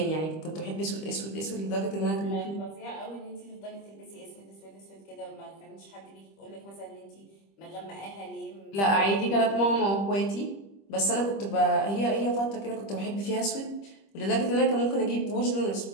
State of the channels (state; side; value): late; right; 25 ms